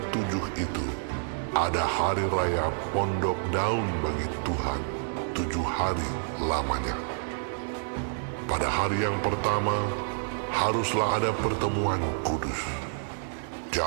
itu, ada hari raya pondok daun bagi Tuhan, 7 hari lamanya. Pada hari yang pertama, haruslah ada pertemuan kudus.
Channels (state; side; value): silent; left; digital silence